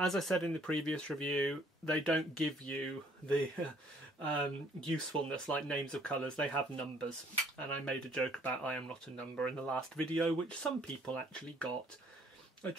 I said in the previous review, they don't give you the usefulness like names of colours. They have numbers, and I made a joke about I am not a number in the last video, which some people actually got. I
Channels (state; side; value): normal; both; correlation 0.62